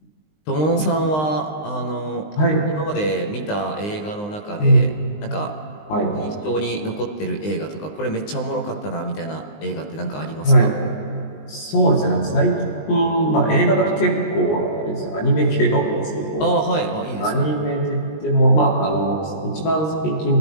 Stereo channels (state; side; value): late; right; 19 ms